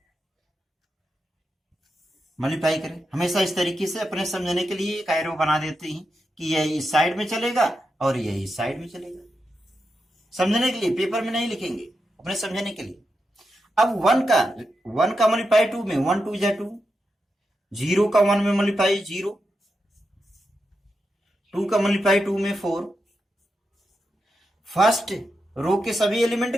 multiply करें। हमेशा इस तरीके से अपने समझने के लिए एक एरो बना देते हैं कि यह इस साइड में चलेगा और यह इस साइड में चलेगा, समझने के लिए, पेपर में नहीं लिखेंगे, अपने समझने के लिए। अब वन का मल्टीप्लाई 2 में 1 2 जा 2, 0 का 1 में मल्टीप्लाई 0, 2 का मल्टीप्लाई 2 में 4, फर्स्ट रो के सभी एलिमेंट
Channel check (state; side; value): normal; both; correlation 0.87